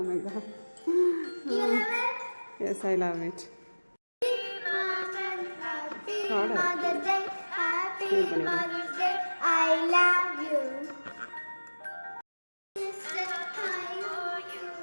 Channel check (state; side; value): inverted; both; correlation -1.00